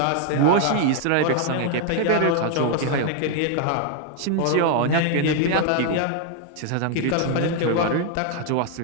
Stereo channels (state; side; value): different; both; correlation 0.00